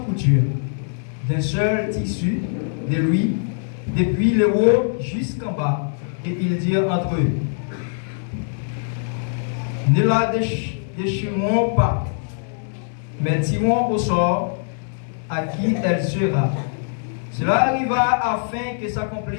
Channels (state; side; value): silent; right; 64 dB below the other